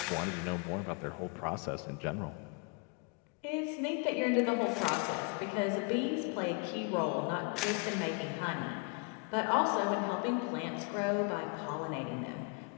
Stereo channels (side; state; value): right; quieter; 33.0 dB